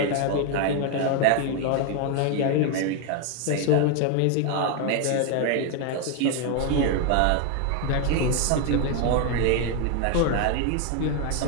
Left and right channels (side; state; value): both; different; correlation 0.01